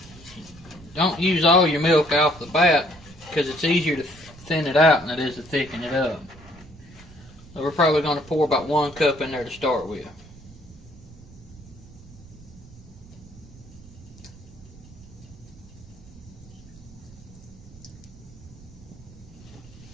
don't use all your milk off the bat because it's easier to thin it out than it is to thicken it up. So we're probably going to pour about 1 cup in there to start with.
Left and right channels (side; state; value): right; noise; rumble, 20 dB below the sound